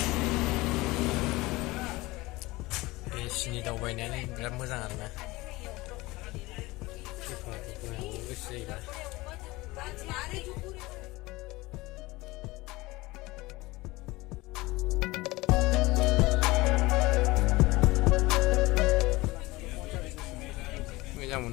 एसिनि दावबायनायानो बिराद मोजां आरोना गोसो जायोबा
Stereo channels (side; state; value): right; quieter; 21.0 dB